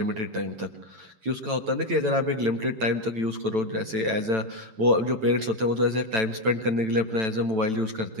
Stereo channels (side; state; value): left; late; 9.0 ms